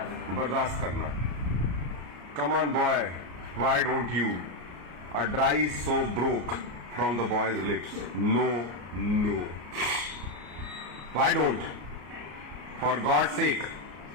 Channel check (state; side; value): late; left; 33 ms